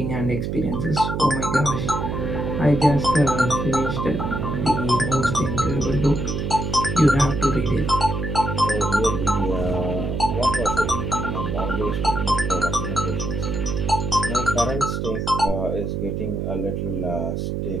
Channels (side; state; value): right; noise; hum, 2 dB below the sound